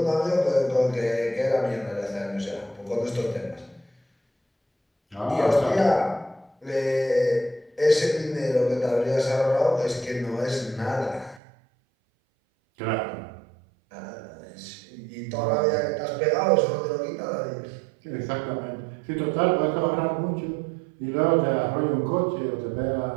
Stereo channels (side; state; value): left; drops out; at 11.4 s